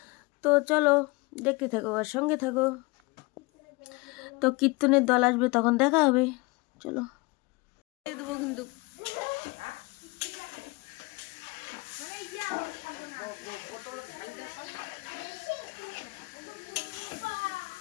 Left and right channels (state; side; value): quieter; right; 25.6 dB